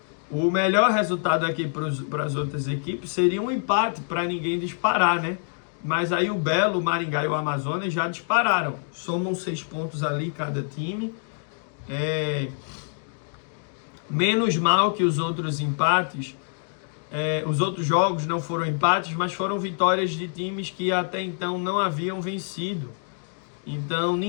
o melhor resultado aqui para as outras equipes seria um empate para ninguém disparar, né? Mas aí o Belo, o Maringá e o Amazonas já dispararam. Somam 6 pontos ali cada time. Menos mal que os outros empates, os outros jogos não foram empates, mas foram vitórias de times que até então não haviam vencido. Então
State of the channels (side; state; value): right; silent; 61 dB below the other